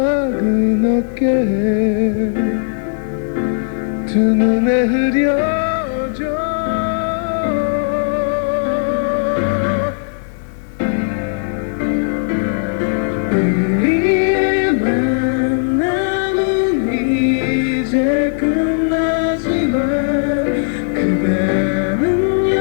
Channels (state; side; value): silent; right; 68 dB below the other